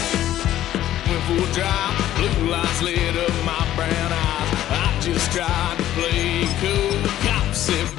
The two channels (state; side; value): quieter; right; 12.9 dB